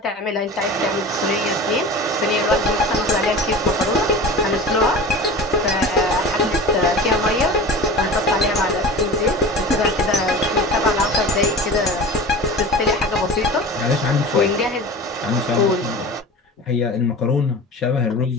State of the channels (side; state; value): both; normal; correlation 0.34